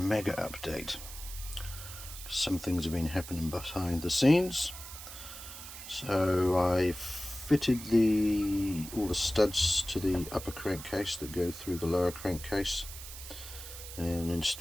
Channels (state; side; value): noise; right; hiss, 12 dB below the sound